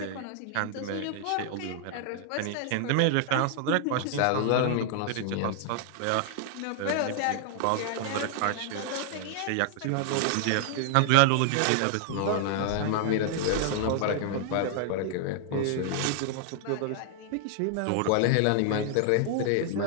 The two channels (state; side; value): different; both; correlation 0.00